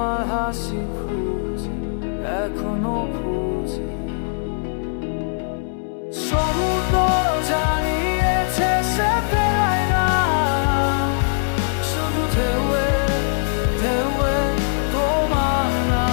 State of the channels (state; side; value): silent; right; digital silence